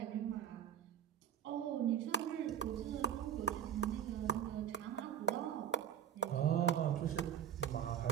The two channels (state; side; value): quieter; left; 9.0 dB